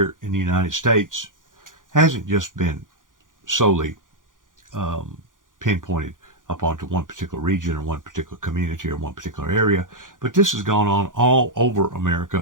in the United States hasn't just been solely pinpointed upon to one particular region or one particular community or one particular area, but this has gone on all over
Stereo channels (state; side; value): late; left; 0.89 ms